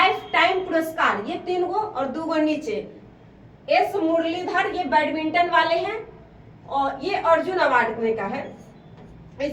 टाइम पुरस्कार ये 3 गो और 2 गो नीचे। एस मुरलीधर ये बैडमिंटन वाले हैं और ये अर्जुन अवार्ड में का है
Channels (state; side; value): identical; both; correlation 1.00